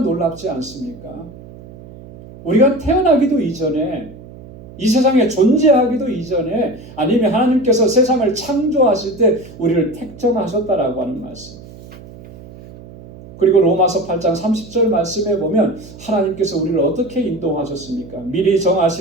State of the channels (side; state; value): right; noise; hum, 18 dB below the sound